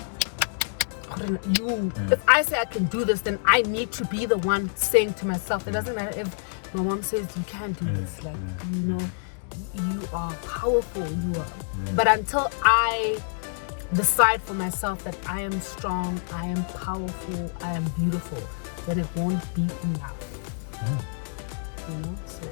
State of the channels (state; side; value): silent; right; digital silence